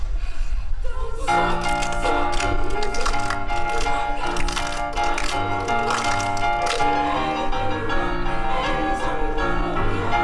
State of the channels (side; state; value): both; identical; correlation 1.00